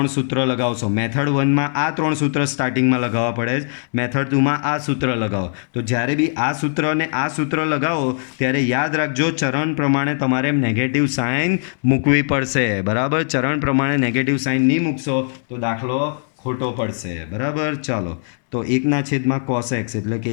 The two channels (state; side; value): silent; right; 64 dB below the other